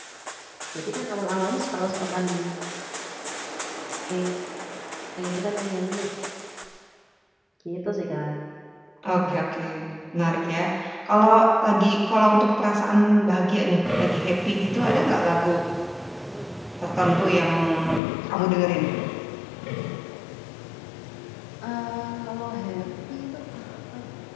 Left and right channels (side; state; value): right; drops out; at 18.0 s